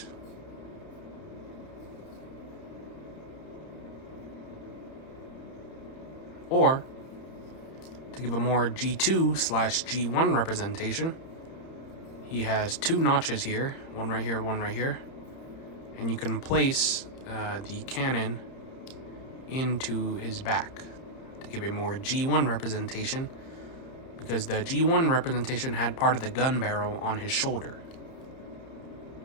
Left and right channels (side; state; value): right; late; 30 ms